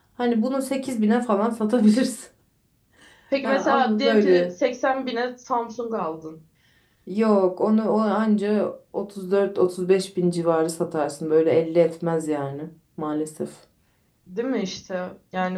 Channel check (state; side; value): identical; both; correlation 1.00